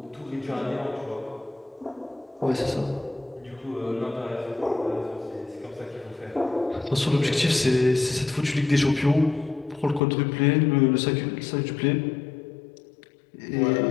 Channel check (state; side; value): drops out; right; at 10.0 s